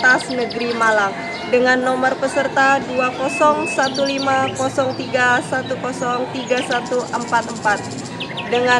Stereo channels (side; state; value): both; identical; correlation 1.00